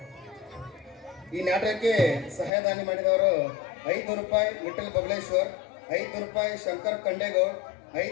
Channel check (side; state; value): right; drops out; at 2.5 s